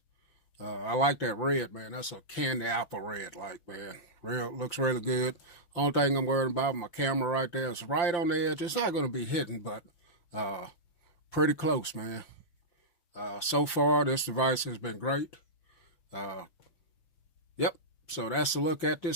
I like that red, man. That's a candy apple red, like, man. Looks really good. Only thing I'm worried about, my camera right there is right on the edge. It's not going to be hidden, but pretty close, man. So far, this device has been great. Yep. So that's a look at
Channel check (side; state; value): right; late; 5.8 ms